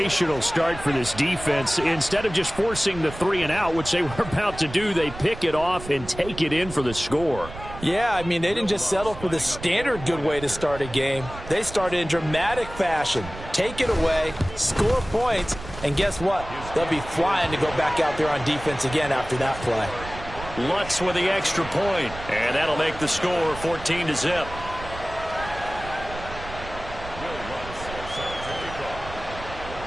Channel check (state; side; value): noise; right; rumble, 13 dB below the sound